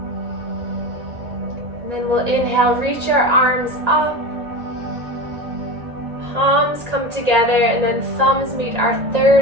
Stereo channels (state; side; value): late; left; 1.8 ms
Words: And then we'll inhale, reach our arms up. Palms come together, and then thumbs meet our